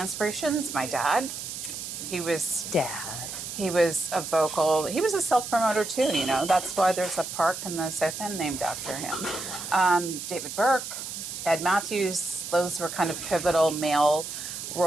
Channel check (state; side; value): noise; right; hiss, 7 dB below the sound